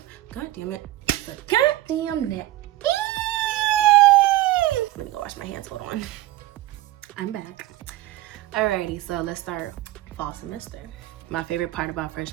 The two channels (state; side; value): quieter; left; 16.0 dB